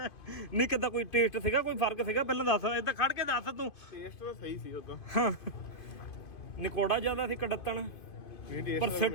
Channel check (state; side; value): late; right; 2.5 ms